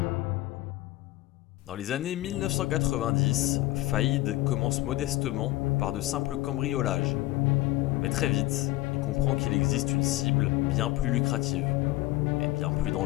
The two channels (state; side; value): quieter; right; 17.8 dB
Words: Dans les années 1990, Faïd commence modestement par de simples cambriolages. Mais très vite, il comprend qu'il existe une cible bien plus lucrative et bien plus